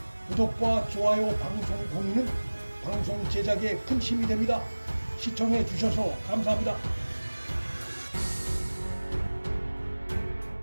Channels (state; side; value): inverted; both; correlation -1.00